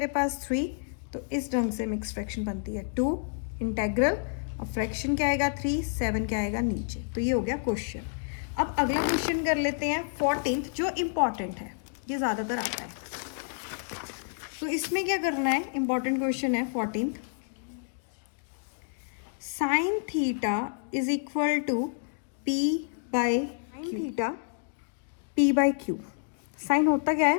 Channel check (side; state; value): right; silent; digital silence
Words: पास? 3. तो इस ढंग से मिक्स फ्रैक्शन बनती है. 2 इंटेग्रल, अब फ्रैक्शन क्या आएगा? 3, 7 क्या आएगा? नीचे. तो ये हो गया क्वेश्चन. अब अगला क्वेश्चन कर लेते हैं 14th, जो इम्पॉर्टेंट है, ये ज़्यादातर आता है. तो इसमें क्या करना है? इम्पॉर्टेंट क्वेश्चन है 14th. Sine theta is equal to P/Q. Sine होता क्या है?